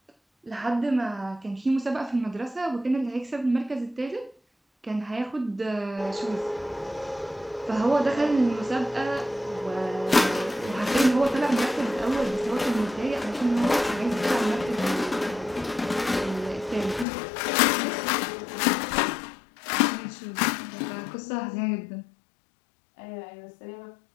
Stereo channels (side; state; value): right; drops out; at 17.1 s